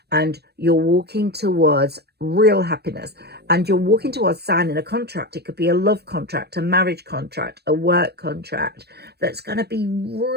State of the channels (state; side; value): late; left; 0.47 ms